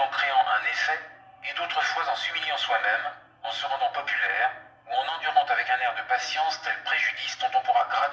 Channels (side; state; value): both; identical; correlation 1.00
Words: en créant un effet, et d'autres fois en s'humiliant soi-même, en se rendant populaire, ou en endurant avec un air de patience tel préjudice dont on pourra